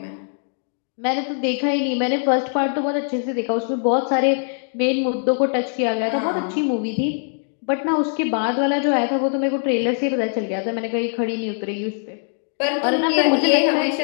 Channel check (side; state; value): right; silent; 59 dB below the other